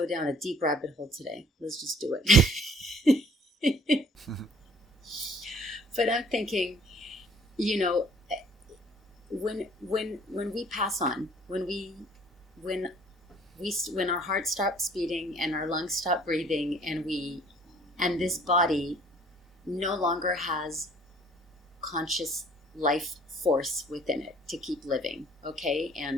down a deep rabbit hole today. Let's just do it. But I'm thinking, when we pass on, when our heart stops beating and our lungs stop breathing, and this body no longer has conscious life force within it to keep living, okay?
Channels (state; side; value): normal; both; correlation 0.56